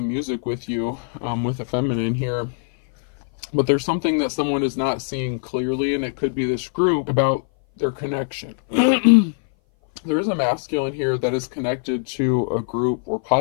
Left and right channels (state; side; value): silent; right; 59 dB below the other